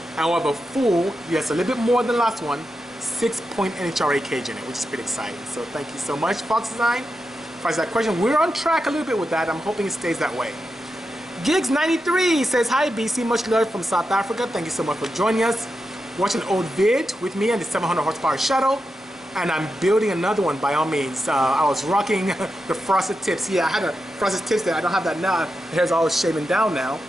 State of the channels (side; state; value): both; normal; correlation 0.88